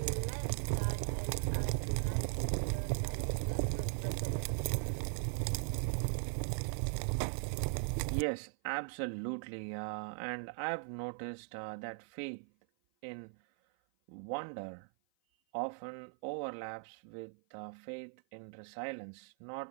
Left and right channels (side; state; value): left; silent; 52 dB below the other